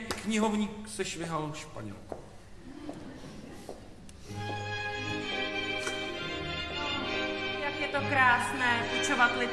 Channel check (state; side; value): identical; both; correlation 1.00